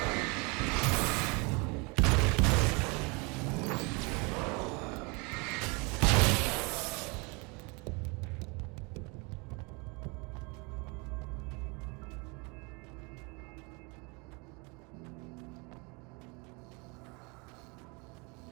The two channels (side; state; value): left; quieter; 29.7 dB